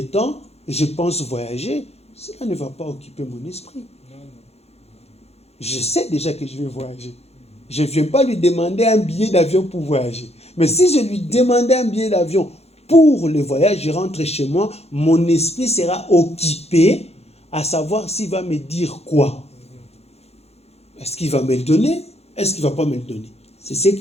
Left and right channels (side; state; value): right; late; 0.30 ms